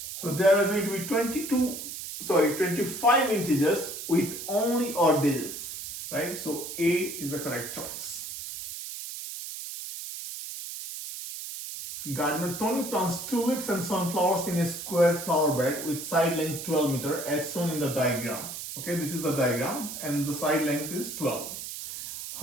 So there are going to be 25 integers with only odd digits, right? So A is the correct choice. Gardener Toni plants tulips and sunflowers in a square flower bed with side length 12 meter as shown in the diagram. Okay, this is the diagram and the side length is 12.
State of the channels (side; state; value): right; noise; hiss, 8 dB below the sound